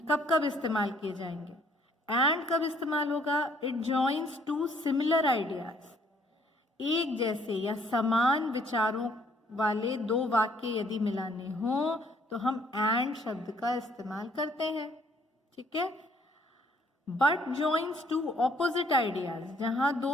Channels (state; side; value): normal; both; correlation 0.63